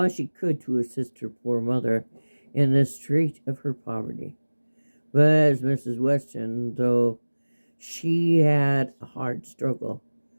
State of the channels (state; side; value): inverted; both; correlation -1.00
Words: she could to assist her poor mother in the strait of her poverty. But as Mrs. Weston, though she had a hard struggle